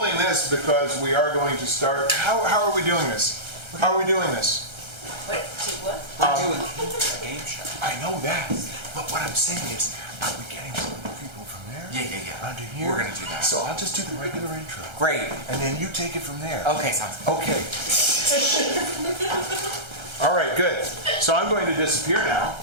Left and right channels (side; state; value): left; late; 1.3 ms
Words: this because we are going to start. How are we doing this? How are we doing this? Wait, what? We're doing a game show. I know that. But what I'm saying is, are we getting some people from there? Yeah. Under here? We're gonna do that. So I'll just do the regular intro. Great. And then you take it from there. Okay, sounds good. Okay. All right, good. So I'm going to disappear now.